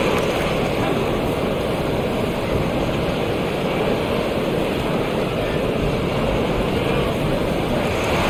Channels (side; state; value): both; identical; correlation 1.00